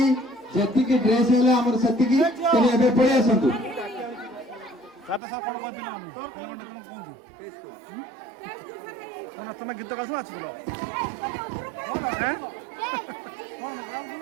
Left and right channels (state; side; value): drops out; left; at 5.2 s